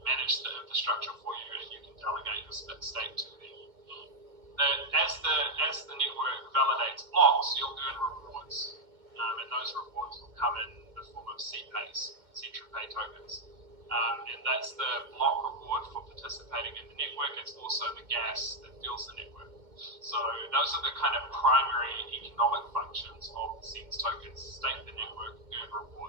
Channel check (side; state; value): left; late; 2.1 ms